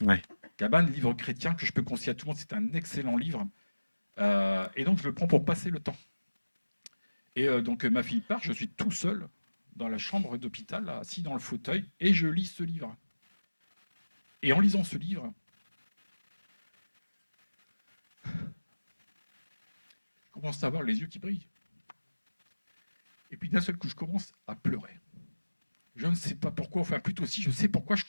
Ouais. Cabane, livre chrétien que je peux conseiller à tout le monde, c'est un excellent livre. Et donc, je le prends pour passer le temps. Et donc, ma fille part, je suis tout seul dans la chambre d'hôpital, assis dans le fauteuil, et je lis ce livre. Et en lisant ce livre, je commence à avoir les yeux qui brillent. Et puis d'un seul coup, je commence à pleurer. Je ne sais pas pourquoi, enfin plutôt si je sais pourquoi je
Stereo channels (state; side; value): inverted; both; correlation -1.00